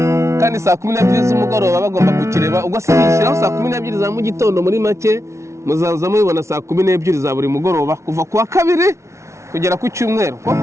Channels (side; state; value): left; late; 0.14 ms